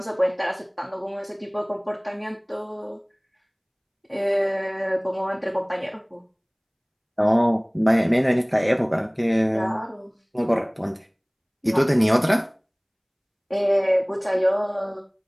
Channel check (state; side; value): identical; both; correlation 1.00